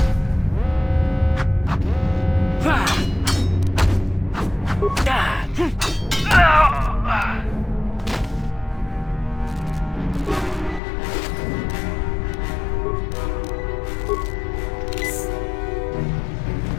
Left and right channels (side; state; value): right; drops out; at 10.8 s